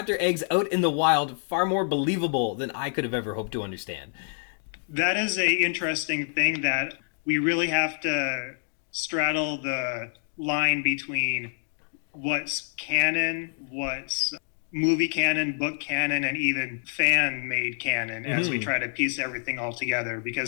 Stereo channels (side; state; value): right; silent; 60 dB below the other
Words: eggs out in the wild far more believable than I could have ever hoped to understand? That is a interesting thing that we really have to straddle the line between what's canon, what's movie canon, book canon, and even fan-made canon as we try to piece everything all together,